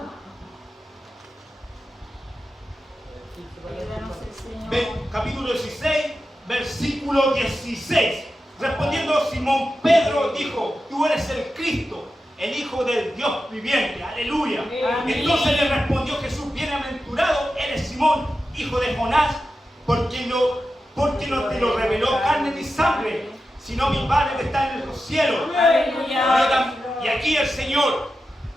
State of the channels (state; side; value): normal; both; correlation 0.91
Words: Ayúdanos el Señor. Capítulo 16, versículo 16. Respondiendo Simón Pedro dijo: tú eres el Cristo, el Hijo del Dios viviente. Aleluya. Amén. Entonces le respondió Jesús: bienaventurado eres Simón, hijo de Jonás, porque no te lo reveló carne ni sangre, sino mi Padre que está en los cielos. Aleluya. Y aquí el Señor